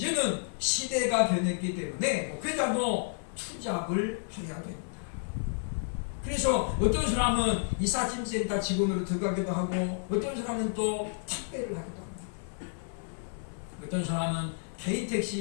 시대가 변했기 때문에 목회자도 투잡을 해야 됩니다. 그래서 어떤 사람은 이삿짐센터 직원으로 들어가기도 하고 어떤 사람은 또 택배를 하기도 합니다. 어떤 사람은 개인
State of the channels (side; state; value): right; silent; 55 dB below the other